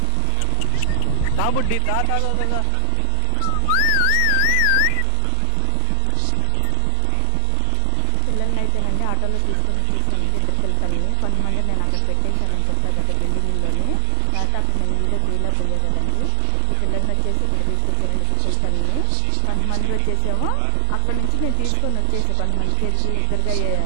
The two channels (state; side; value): different; both; correlation 0.00